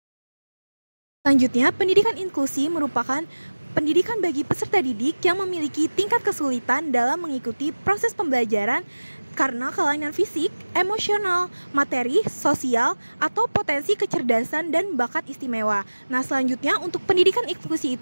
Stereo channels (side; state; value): both; inverted; correlation -1.00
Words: Selanjutnya, pendidikan inklusi merupakan pendidikan bagi peserta didik yang memiliki tingkat kesulitan dalam mengikuti proses pembelajaran karena kelainan fisik, emosional, materi, sosial, atau potensi kecerdasan dan bakat istimewa. Nah, selanjutnya untuk pendidikan inklusi